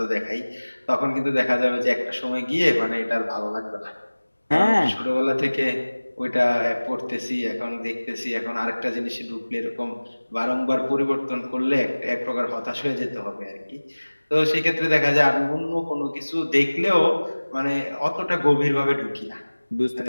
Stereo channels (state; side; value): inverted; both; correlation -1.00